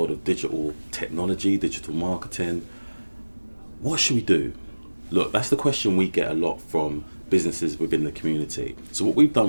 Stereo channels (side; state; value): both; inverted; correlation -1.00